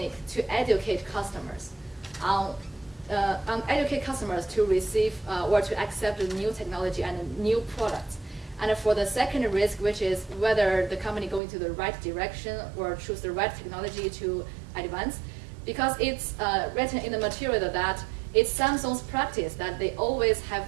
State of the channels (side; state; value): left; drops out; at 11.4 s